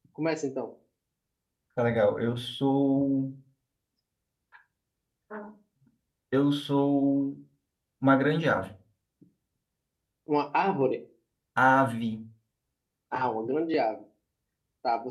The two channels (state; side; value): identical; both; correlation 1.00